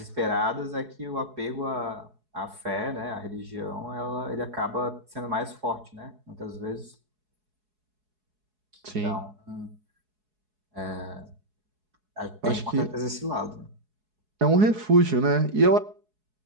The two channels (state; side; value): late; left; 4.7 ms